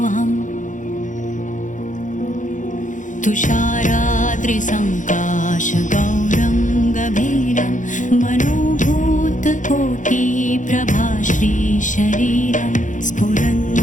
तुषाराद्रिसङ्काशगौरं गभीरं मनोभूतकोटिप्रभाश्रीशरीरं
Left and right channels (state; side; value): late; right; 0.37 ms